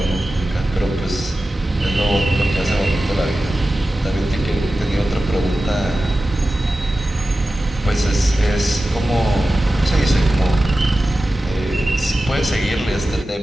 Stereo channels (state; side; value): normal; both; correlation 0.94